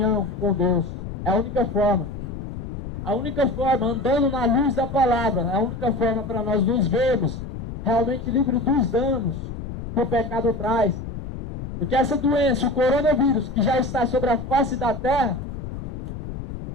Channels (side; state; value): left; noise; rumble, 8 dB below the sound